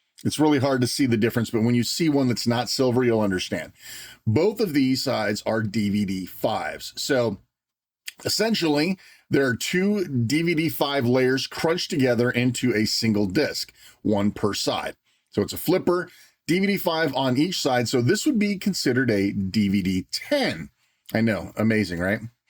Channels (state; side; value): identical; both; correlation 1.00